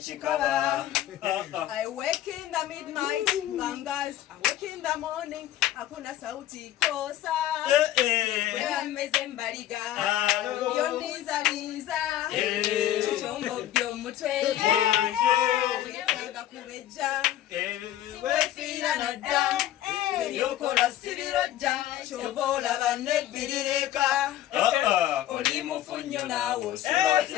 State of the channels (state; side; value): quieter; right; 12.8 dB